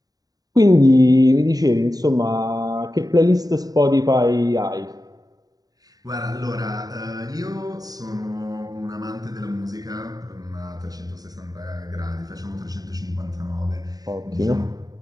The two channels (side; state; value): left; late; 0.18 ms